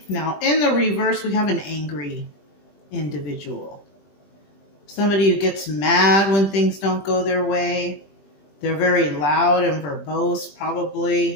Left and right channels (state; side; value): late; right; 20 ms